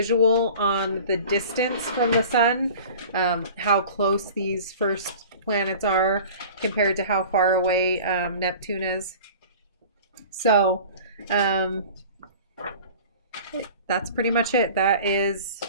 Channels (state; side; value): inverted; both; correlation -0.42